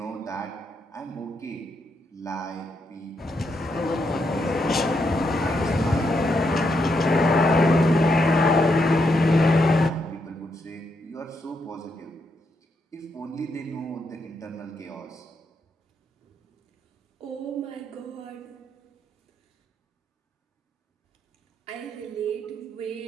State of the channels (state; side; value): normal; both; correlation 0.80